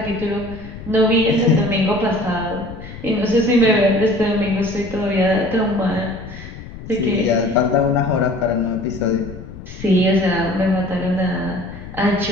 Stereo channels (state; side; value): noise; left; rumble, 13 dB below the sound